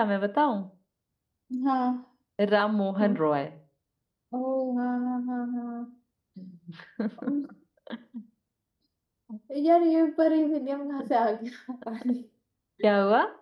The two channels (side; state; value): both; identical; correlation 1.00